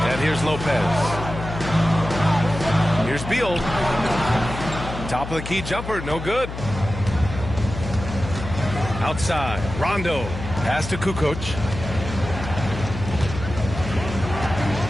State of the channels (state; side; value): noise; left; hum, 8 dB below the sound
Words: And here's Lopez. Here's Beal. Top of the key jumper, no good. Outside, Rondo. Pass to Kukoc.